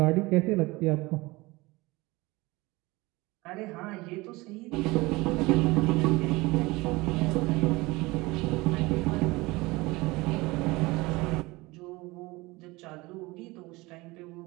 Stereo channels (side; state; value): left; quieter; 22.3 dB